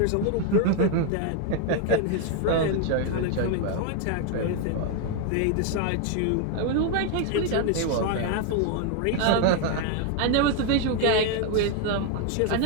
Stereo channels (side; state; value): both; different; correlation 0.01